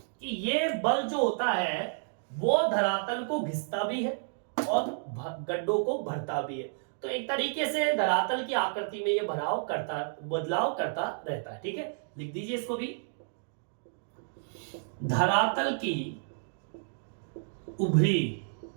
ये बल जो होता है वो धरातल को घिसता भी है और गड्ढों को भरता भी है। तो एक तरीके से धरातल की आकृति में ये बदलाव करता रहता है। ठीक है, लिख दीजिए इसको भी, धरातल की उभरी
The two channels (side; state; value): left; silent; digital silence